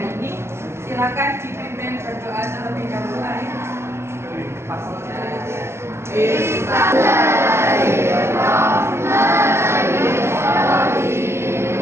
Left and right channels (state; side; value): late; left; 0.12 ms